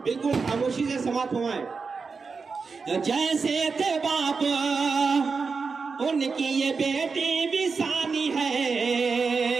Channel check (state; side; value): quieter; left; 4.9 dB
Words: बिल्कुल खामोशी से समाप्त हुए। जैसे थे बाप उनकी ये बेटी भी सानी है,